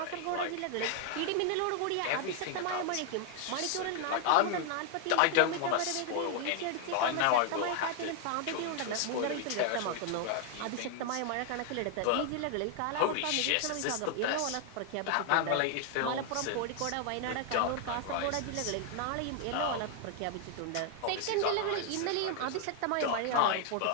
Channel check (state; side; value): different; both; correlation 0.00